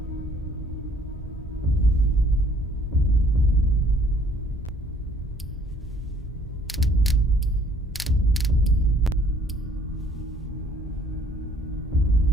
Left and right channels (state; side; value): normal; both; correlation 0.59